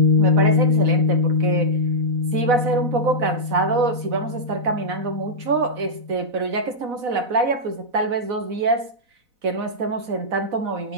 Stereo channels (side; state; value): left; late; 4.0 ms